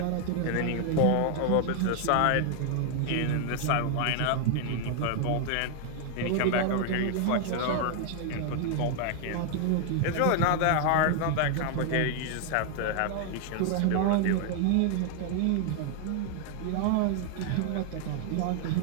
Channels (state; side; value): different; both; correlation 0.00